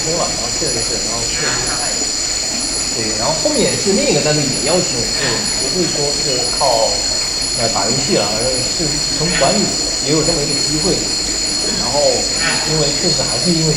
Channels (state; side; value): identical; both; correlation 1.00